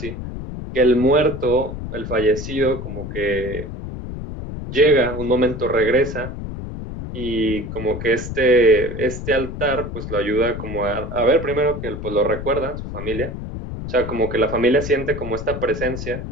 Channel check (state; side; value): noise; left; rumble, 8 dB below the sound